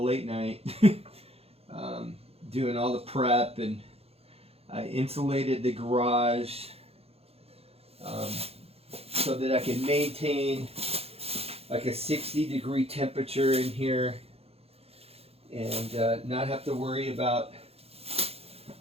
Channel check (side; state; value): left; late; 0.29 ms